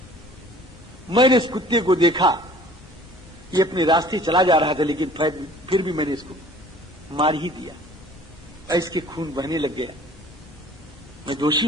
मैंने इस कुत्ते को देखा, ये अपने रास्ते चला जा रहा था, लेकिन फिर भी मैंने इसको मार ही दिया। इसके खून बहने लग गया। मैं दोषी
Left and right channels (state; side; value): normal; both; correlation 0.50